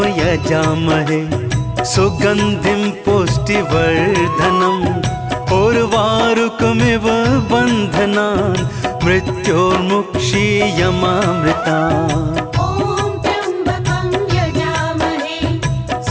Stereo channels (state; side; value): identical; both; correlation 1.00